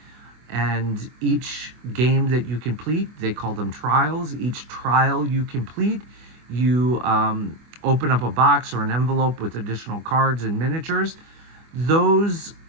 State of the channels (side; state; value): left; late; 24 ms